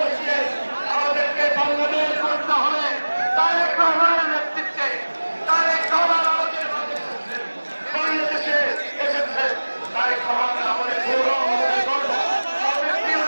আমাদেরকে বাংলাদেশ করতে হবে। তারেক রহমানের নেতৃত্বে তারেক রহমান আমাদের বাংলাদেশে এসেছে। তারেক রহমান আমাদের গৌরব, আমাদের গর্ব, আমাদের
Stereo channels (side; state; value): both; inverted; correlation -1.00